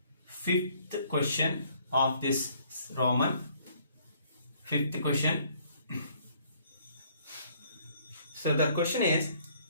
5th question of this Roman. 5th question. So the question is,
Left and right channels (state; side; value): inverted; both; correlation -0.62